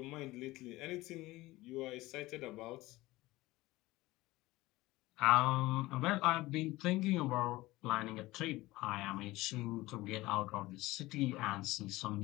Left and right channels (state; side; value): quieter; right; 19.1 dB